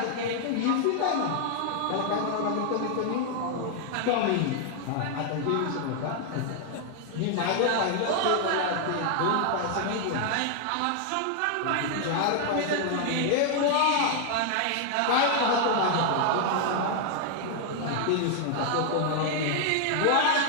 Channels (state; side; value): different; both; correlation 0.00